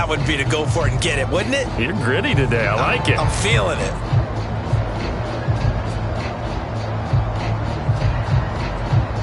would be to go for it and get it, wouldn't it? You're gritty today. I like it. I'm feeling it.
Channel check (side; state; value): both; identical; correlation 1.00